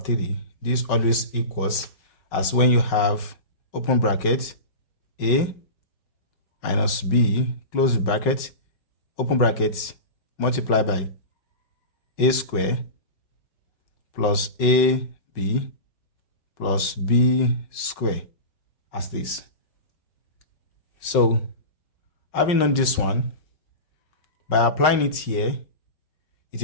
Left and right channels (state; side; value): late; right; 5.4 ms